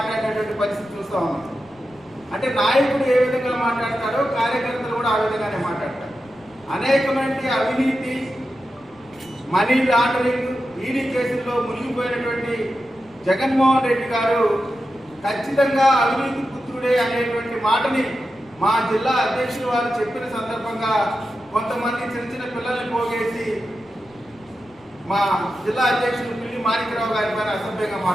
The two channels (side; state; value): right; noise; rumble, 30 dB below the sound